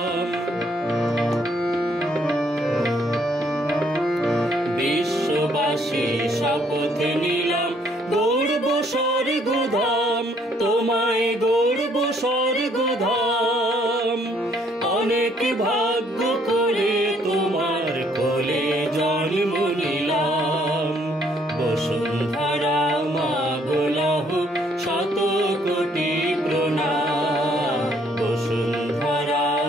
বিশ্ববাসী শপথ নিলাম, গৌরব স্বর্গধাম তোমায় গৌরব স্বর্গধাম। অনেক ভাগ্য করে তোমার কোলে জন্ম নিলাম। বসুন্ধরা মা গো লহ শত কোটি প্রণাম, বসুন্ধরা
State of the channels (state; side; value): normal; both; correlation 0.66